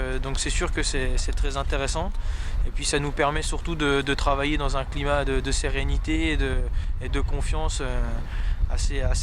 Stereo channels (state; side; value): identical; both; correlation 1.00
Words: c'est sûr que c'est très intéressant. Et puis ça nous permet surtout de travailler dans un climat de sérénité et de confiance